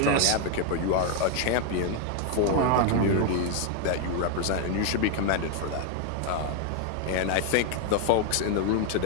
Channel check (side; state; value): both; different; correlation 0.01